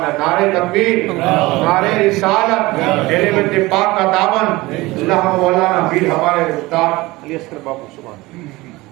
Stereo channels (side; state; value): left; quieter; 20.7 dB